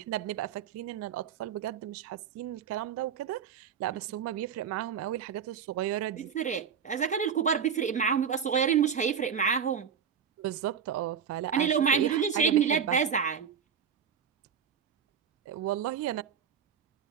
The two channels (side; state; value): left; quieter; 7.4 dB